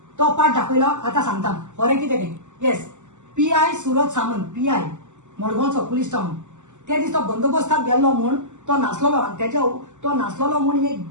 तो पाठ दाखयला आतां सांगता खरें कितें तें yes PI Surat Samant PI मडगांवचो पुलीस टावन त्या दीस तो बंदोबस्ताक गेल्लो म्हूण तो नासलोलो आनी तेच्या तो नासलोलो म्हूण एक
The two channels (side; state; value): left; late; 0.84 ms